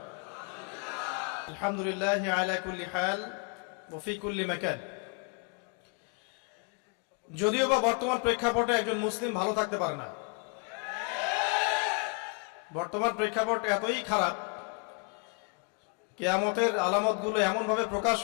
আলহামদুলিল্লাহ আলা কুল্লি হাল ওয়া ফি কুল্লি মাকান। যদিও বা বর্তমান প্রেক্ষাপটে একজন মুসলিম ভালো থাকতে পারে না। বর্তমান প্রেক্ষাপট এতই খারাপ, কিয়ামতের আলামতগুলো এমনভাবে প্রকাশ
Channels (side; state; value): right; quieter; 34.8 dB